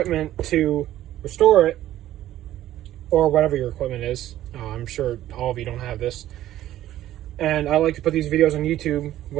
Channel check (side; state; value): left; quieter; 13.4 dB